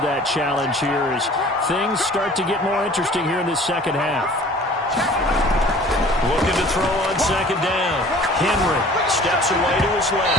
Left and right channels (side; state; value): both; normal; correlation 0.48